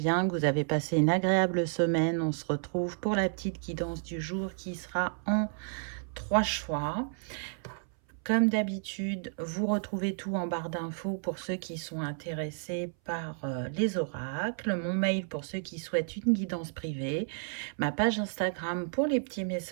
que vous avez passé une agréable semaine. On se retrouve pour la petite guidance du jour qui sera en 3 choix. Comme d'habitude, vous retrouvez tout en barre d'infos pour ceux qui sont intéressés par les oracles, mon mail pour ceux qui souhaitent une guidance privée, ma page Instagram pour les petits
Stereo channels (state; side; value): silent; left; 57 dB below the other